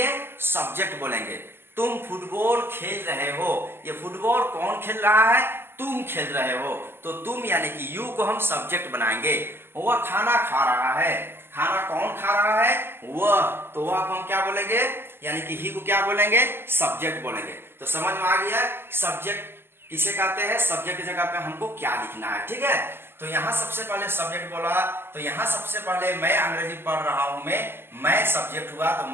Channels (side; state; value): left; late; 0.11 ms